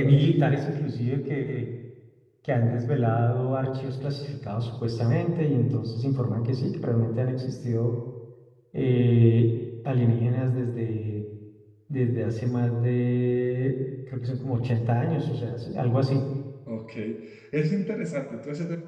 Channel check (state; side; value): identical; both; correlation 1.00